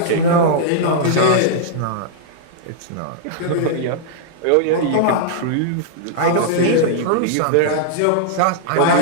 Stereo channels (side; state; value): both; different; correlation -0.01